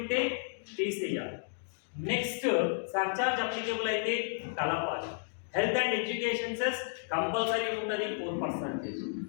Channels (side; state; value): right; silent; digital silence